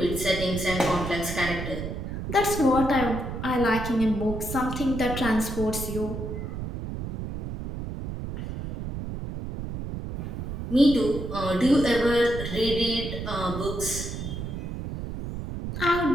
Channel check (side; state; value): right; noise; rumble, 6 dB below the sound